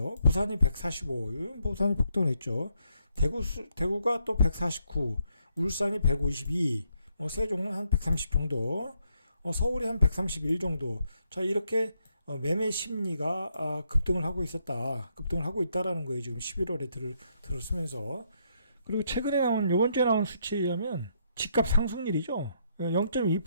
부산이 145, 부산이 폭등을 했죠. 대구가 또 149, 울산이 152, 세종은 한 130 정도, 서울이 한 131 정도. 자, 이렇게 매매 심리가 급등을 하고 있다라는 거예요. 지금 11월에 들었으면서. 그리고 최근에 요번 주에 나온 수치에 의하면 집값 상승률이죠. 0.2%,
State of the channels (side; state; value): both; inverted; correlation -0.75